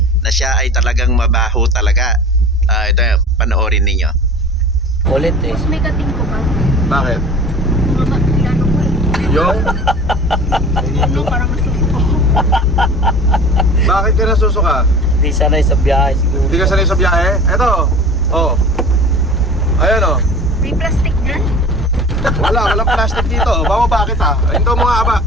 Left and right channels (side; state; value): both; normal; correlation 0.39